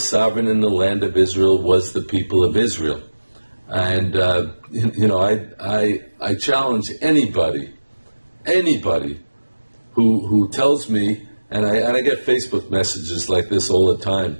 in the land of Israel was the people of Israel. And, I challenge anybody who tells me, and I get Facebook messages like this all the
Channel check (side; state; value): both; inverted; correlation -1.00